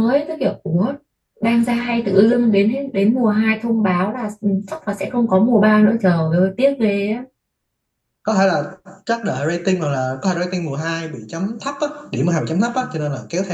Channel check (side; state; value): both; identical; correlation 1.00